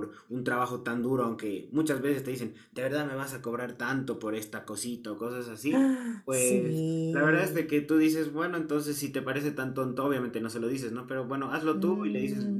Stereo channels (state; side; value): identical; both; correlation 1.00